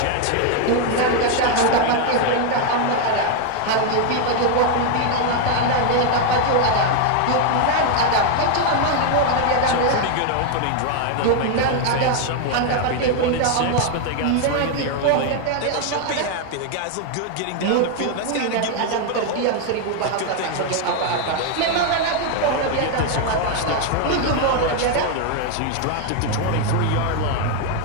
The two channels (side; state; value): both; different; correlation 0.01